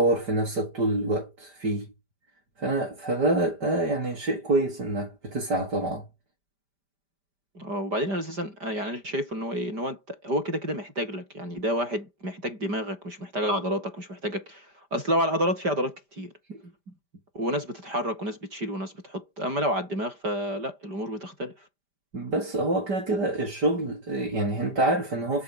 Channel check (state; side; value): late; left; 5.1 ms